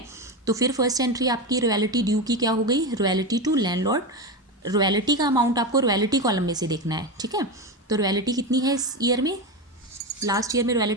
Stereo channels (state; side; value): normal; both; correlation 0.18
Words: तो फिर फर्स्ट एंट्री आपकी रॉयल्टी ड्यू की क्या हो गई, रॉयल्टी टू लैंडलॉर्ड। रॉयल्टी का अमाउंट आपको रॉयल्टी कॉलम में से देखना है। ठीक है, तो रॉयल्टी कितनी है इस ईयर में, लास्ट ईयर में